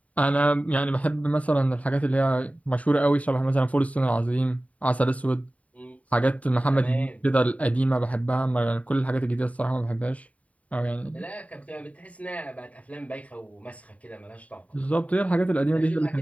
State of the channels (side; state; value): right; late; 0.068 ms